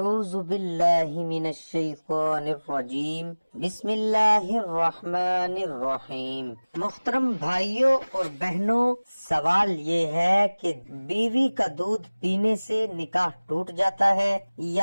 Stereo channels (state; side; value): inverted; both; correlation -1.00